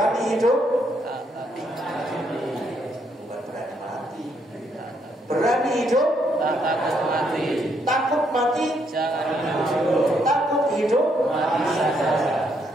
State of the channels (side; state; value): both; normal; correlation 0.74